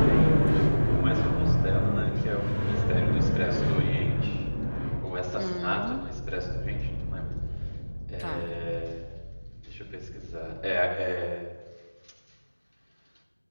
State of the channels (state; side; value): inverted; both; correlation -1.00